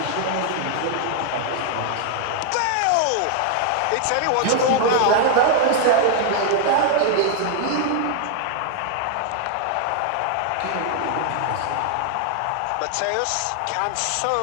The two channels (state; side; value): different; both; correlation 0.00